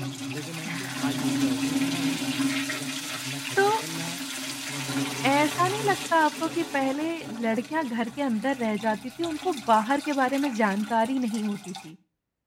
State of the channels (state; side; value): identical; both; correlation 1.00